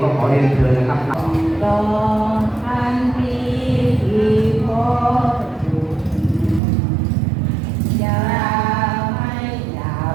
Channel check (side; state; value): left; drops out; at 6.6 s